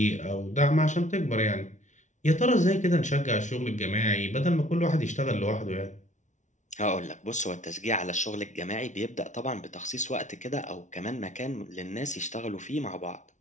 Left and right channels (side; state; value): right; late; 0.36 ms